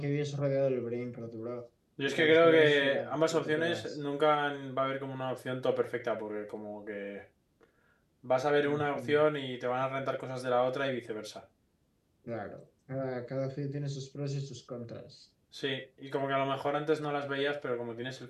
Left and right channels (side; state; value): both; identical; correlation 1.00